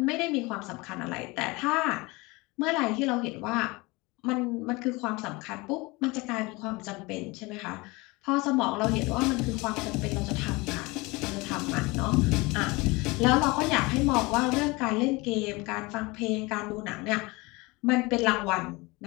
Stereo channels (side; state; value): right; quieter; 24.3 dB